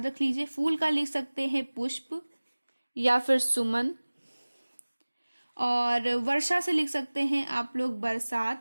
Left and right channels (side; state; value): both; inverted; correlation -1.00